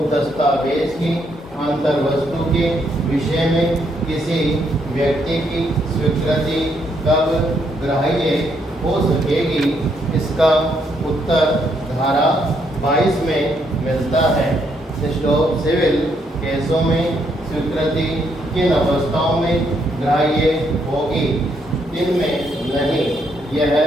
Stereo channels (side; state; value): both; normal; correlation 0.74